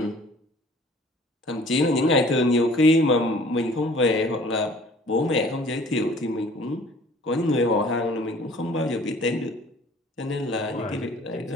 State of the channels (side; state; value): both; normal; correlation 0.52